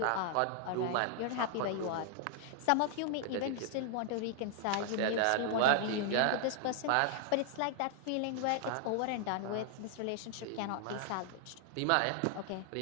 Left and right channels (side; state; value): both; different; correlation 0.00